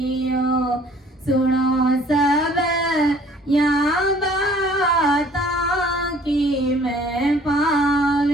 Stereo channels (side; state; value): both; normal; correlation 0.56